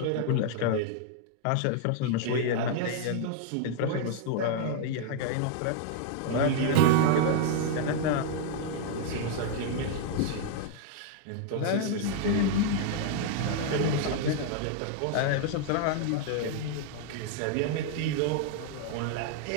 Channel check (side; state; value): both; different; correlation 0.00